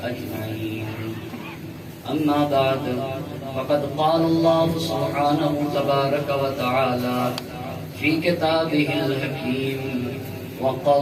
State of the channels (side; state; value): both; identical; correlation 1.00